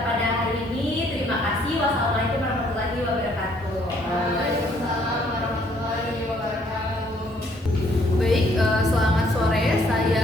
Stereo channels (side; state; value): both; normal; correlation 0.65